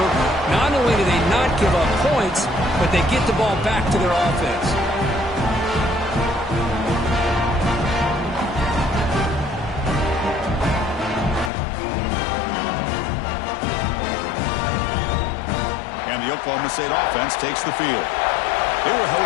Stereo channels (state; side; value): drops out; right; at 11.5 s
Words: Not only do they not give up points, but they get the ball back to their offense. And the Oklahoma State offense takes the field. They were